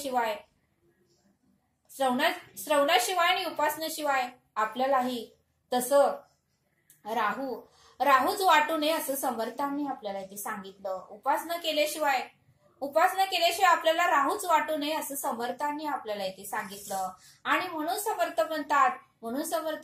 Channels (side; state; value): both; identical; correlation 1.00